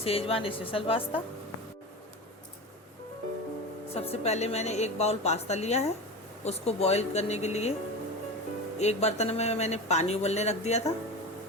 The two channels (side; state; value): both; normal; correlation 0.27